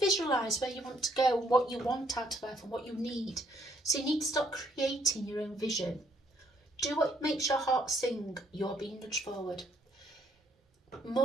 visualise where you want to go, what you want out of life and what you need. So you need to start creating your own vision. Do what makes your heart sing. You're being nudged forward.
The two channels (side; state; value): both; normal; correlation 0.69